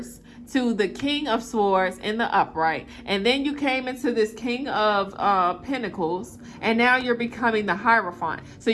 to the King of Swords in the upright. And then you came into this King of Pentacles. And now you're becoming the Hierophant. So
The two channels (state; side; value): identical; both; correlation 1.00